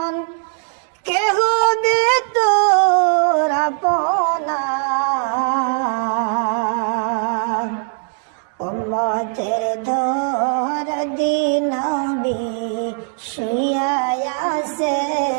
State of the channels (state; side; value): silent; left; 55 dB below the other